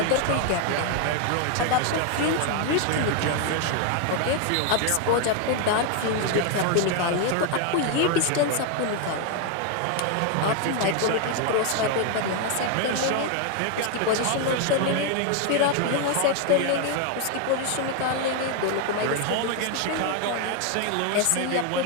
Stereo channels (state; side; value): different; both; correlation 0.00